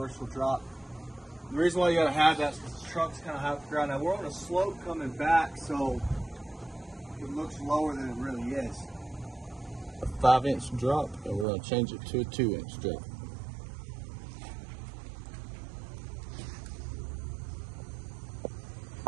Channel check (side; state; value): left; drops out; at 11.5 s